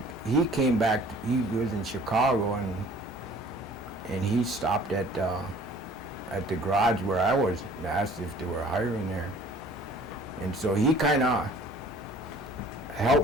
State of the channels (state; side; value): normal; both; correlation 0.51